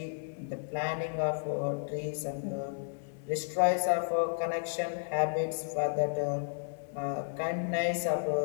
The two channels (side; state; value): right; silent; digital silence